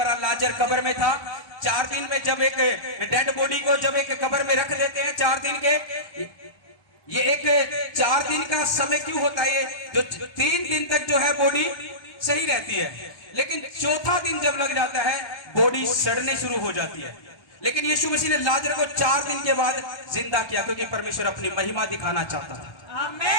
लाजर कब्र में था, 4 दिन में जब एक डेड बॉडी को जब एक कब्र में रख देते हैं 4 दिन के, ये एक 4 दिन का समय क्यों होता है, ये जो 3 दिन तक जो है बॉडी सही रहती है, लेकिन चौथा दिन जब लग जाता है बॉडी सड़ने शुरू हो जाती है। लेकिन यीशु मसीह ने लाजर को 4 दिन के बाद जिंदा किया, क्योंकि परमेश्वर अपनी महिमा दिखाना चाहता था।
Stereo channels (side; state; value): right; late; 1.2 ms